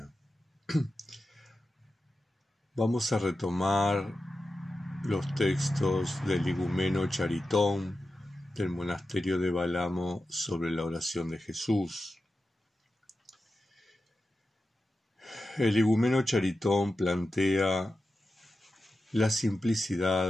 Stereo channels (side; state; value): both; normal; correlation 0.91